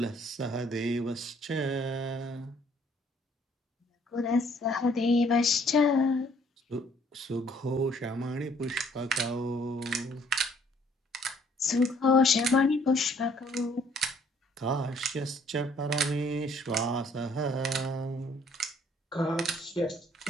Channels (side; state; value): both; normal; correlation 0.62